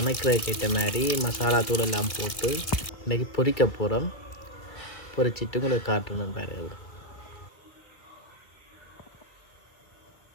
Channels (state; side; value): late; right; 2.2 ms